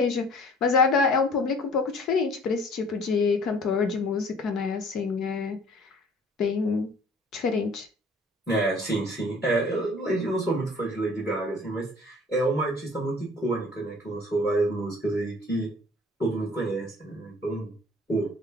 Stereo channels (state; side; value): normal; both; correlation 0.51